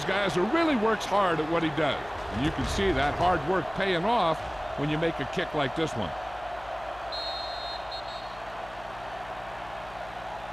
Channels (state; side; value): noise; left; hum, 20 dB below the sound